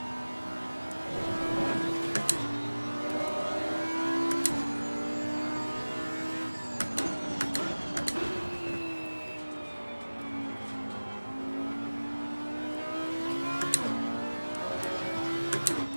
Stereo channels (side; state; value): both; inverted; correlation -1.00